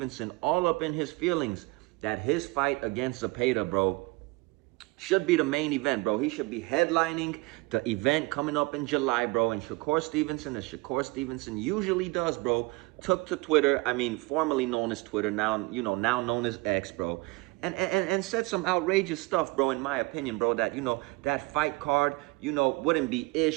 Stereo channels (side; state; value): left; quieter; 24.2 dB